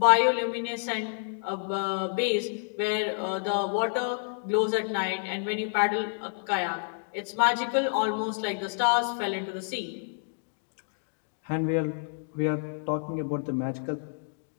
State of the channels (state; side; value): silent; right; digital silence